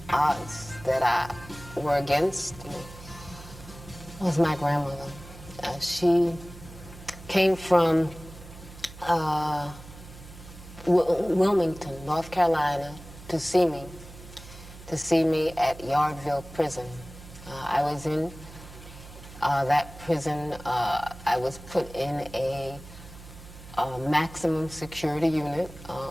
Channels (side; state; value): right; noise; hum, 17 dB below the sound